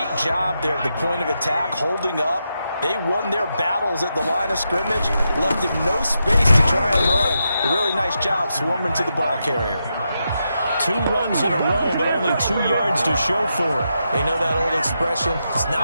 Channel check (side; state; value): both; inverted; correlation -0.85